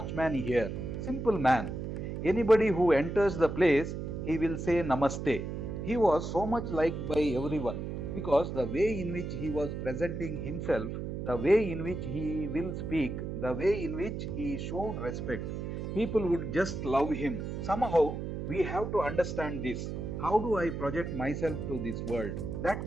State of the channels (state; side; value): noise; right; hum, 5 dB below the sound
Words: here, simple man. Anybody who enters the place, he will say Namaste. He was so much liked by everyone because the way in which he was presenting himself, the way in which he will speak, the way in which he showed respect, people would just love him. Somehow, we have to understand this. How do I project myself to this world?